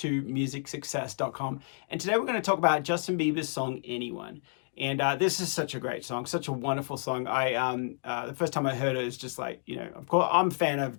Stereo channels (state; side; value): silent; right; 58 dB below the other